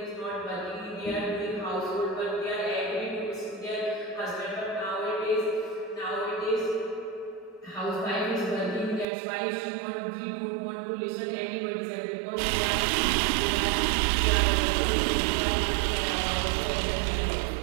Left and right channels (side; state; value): left; drops out; at 9.1 s